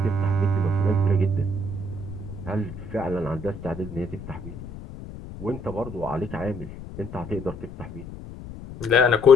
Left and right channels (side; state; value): left; noise; rumble, 12 dB below the sound